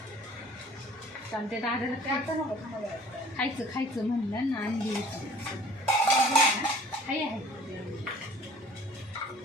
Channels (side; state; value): both; normal; correlation 0.50